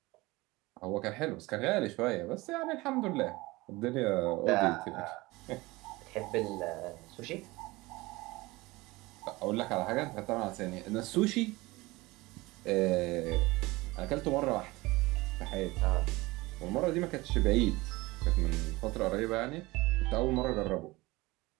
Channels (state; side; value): quieter; left; 21.4 dB